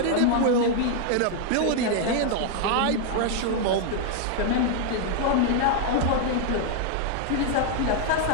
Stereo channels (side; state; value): both; different; correlation 0.00